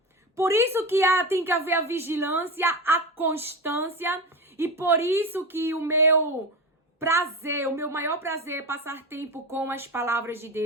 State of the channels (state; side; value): normal; both; correlation 0.21